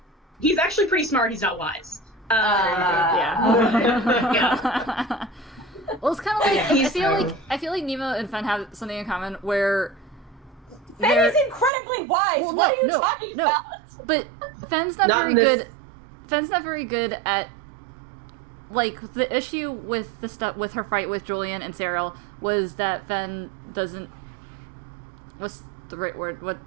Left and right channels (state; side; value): drops out; left; at 11.7 s